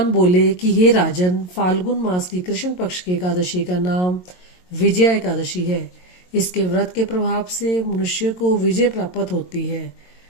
बोले कि हे राजन, फाल्गुन मास की कृष्ण पक्ष की एकादशी का नाम विजया एकादशी है। इसके व्रत के प्रभाव से मनुष्य को विजय प्राप्त होती है।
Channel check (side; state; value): right; late; 22 ms